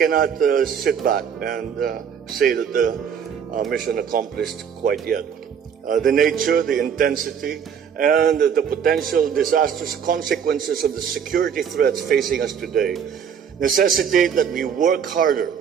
sit back and say that the mission accomplished quite yet. The nature, the intensity, and the potential disastrous consequences of the security threats facing us today necessitate that we work harder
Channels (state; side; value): quieter; left; 7.6 dB